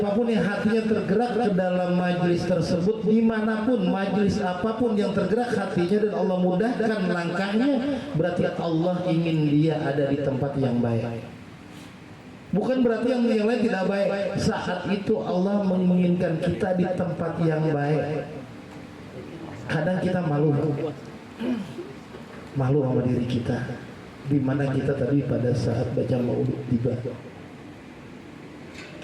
yang hatinya tergerak ke dalam majelis tersebut, dimanapun majelis apapun yang tergerak hatinya dan Allah mudahkan langkahnya, berarti Allah ingin dia ada di tempat yang baik. Bukan berarti yang lain tidak baik. Saat itu Allah menginginkan kita di tempat yang baik. Kadang kita malu sama diri kita. Di mana kita tadi pada saat baca maulid tiba,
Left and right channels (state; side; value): identical; both; correlation 1.00